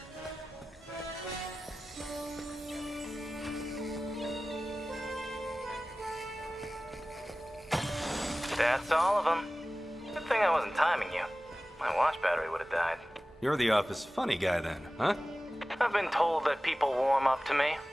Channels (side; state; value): both; normal; correlation 0.96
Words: That's all of them. Good thing I wasn't timing you. My watch battery would have died. You're the office funny guy then, huh? I've been told that people warm up to me.